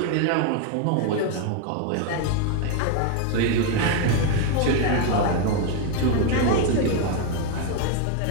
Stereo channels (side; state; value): both; different; correlation 0.01